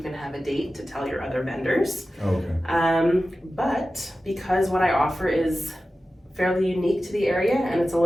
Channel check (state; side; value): normal; both; correlation 0.94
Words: can have a date to tell your other vendors. But because what I offer is fairly unique to the area and it's a